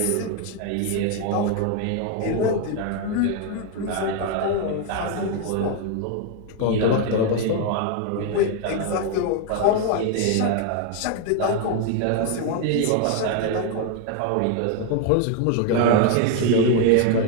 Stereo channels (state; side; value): different; both; correlation 0.01